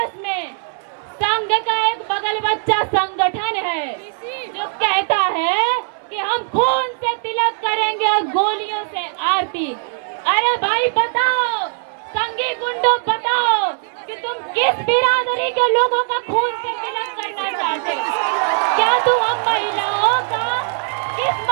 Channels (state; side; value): silent; left; 62 dB below the other